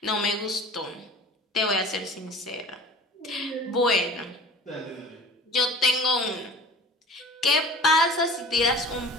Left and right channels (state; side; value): normal; both; correlation 0.42